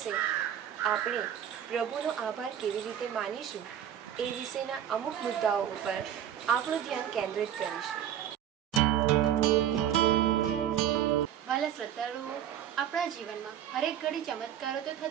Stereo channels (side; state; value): left; quieter; 10.2 dB